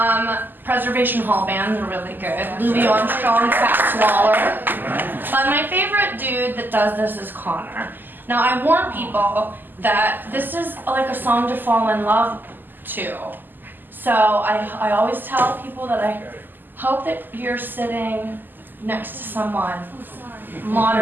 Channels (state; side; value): late; left; 0.090 ms